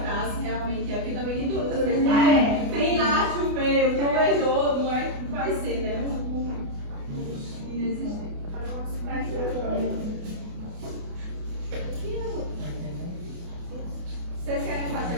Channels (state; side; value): late; left; 28 ms